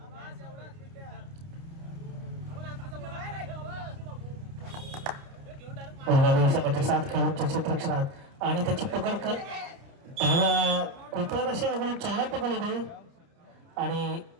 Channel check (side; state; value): left; late; 29 ms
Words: दुर्गादेवी संघाच्या 7 खेळाडूंच्या क्षेत्ररक्षणात आणि त्याची पकड कर डाव्या कोपऱ्यात असे अगदी चौरा पकड होते आणि